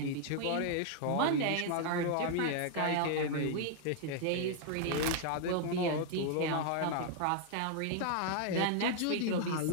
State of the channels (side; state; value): both; different; correlation 0.00